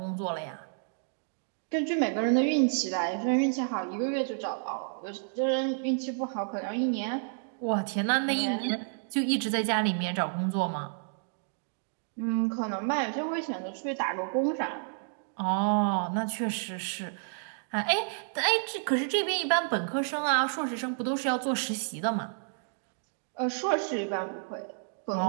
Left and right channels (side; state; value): left; silent; digital silence